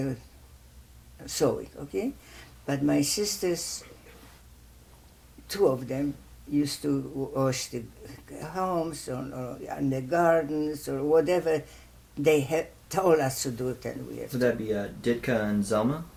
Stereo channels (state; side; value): identical; both; correlation 1.00